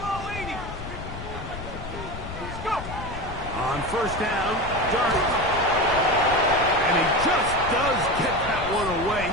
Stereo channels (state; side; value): noise; left; rumble, 10 dB below the sound